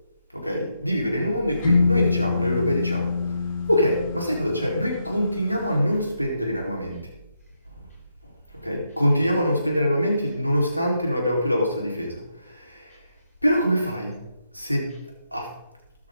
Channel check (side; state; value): both; inverted; correlation -0.81